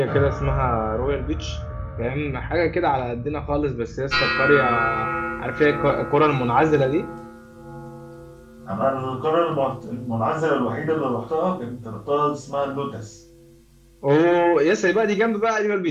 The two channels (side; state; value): both; identical; correlation 1.00